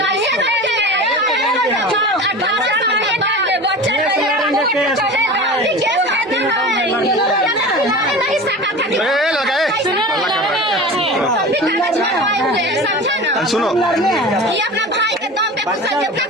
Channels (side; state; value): both; normal; correlation 0.33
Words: सुनो, ये अपना भाई के दम पे